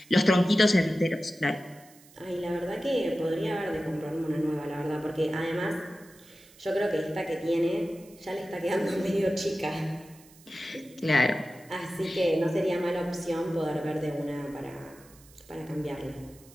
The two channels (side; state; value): right; noise; hiss, 25 dB below the sound